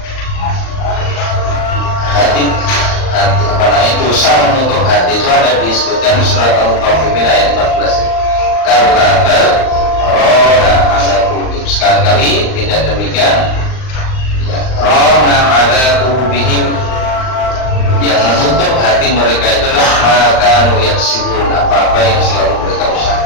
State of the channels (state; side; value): late; right; 39 ms